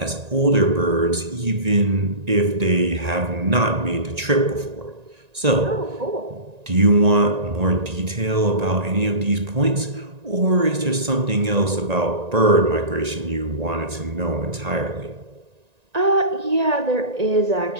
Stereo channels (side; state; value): left; late; 1.9 ms